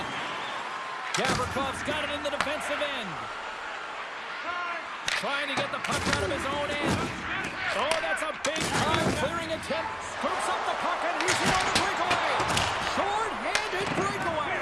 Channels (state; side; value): identical; both; correlation 1.00